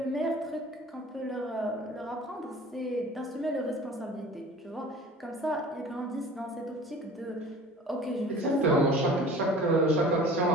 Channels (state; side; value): normal; both; correlation 0.44